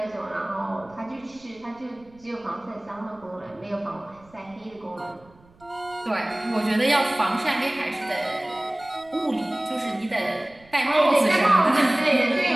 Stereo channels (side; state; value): right; noise; rumble, 28 dB below the sound